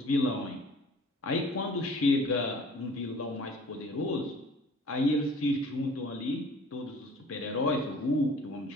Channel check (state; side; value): normal; both; correlation 0.49